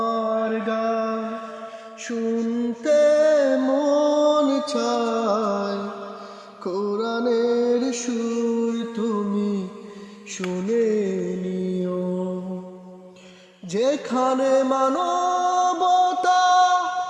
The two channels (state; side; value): identical; both; correlation 1.00